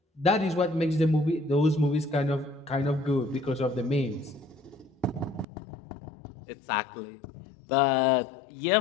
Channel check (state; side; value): drops out; right; at 5.5 s